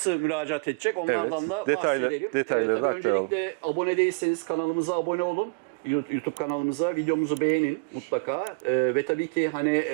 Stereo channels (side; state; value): left; quieter; 31.9 dB